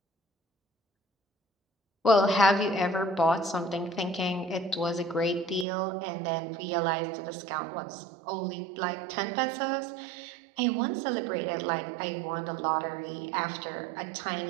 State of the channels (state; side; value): drops out; left; at 5.7 s